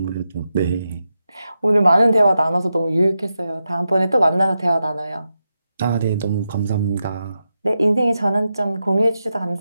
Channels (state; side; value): inverted; both; correlation -0.88